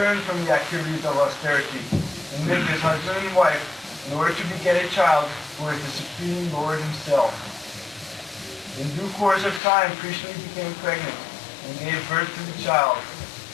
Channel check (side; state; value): right; drops out; at 9.6 s